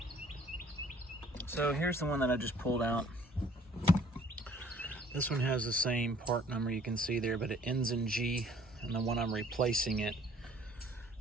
So here's the one that I just pulled out. This one has the same part number you can see there, but it ends in G, and the one I'm replacing it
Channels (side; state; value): both; normal; correlation 0.56